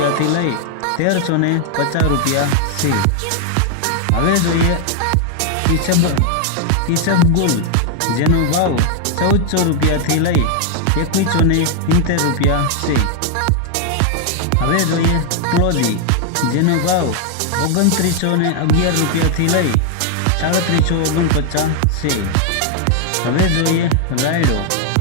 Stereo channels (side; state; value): both; different; correlation 0.00